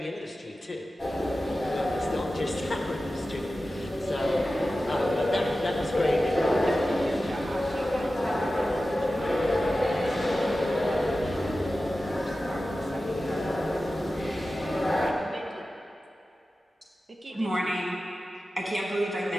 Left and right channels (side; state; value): both; normal; correlation 0.94